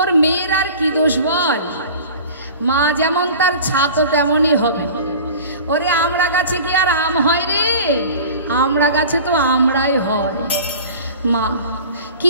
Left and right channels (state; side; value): inverted; both; correlation -0.40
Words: মেয়ের আর কি দোষ বল? মা যেমন তার ছাতো তেমনই হবে। ওরে আমড়া গাছে কি আর আম হয় রে? আমড়া গাছে তো আমরাই হয়। মা কি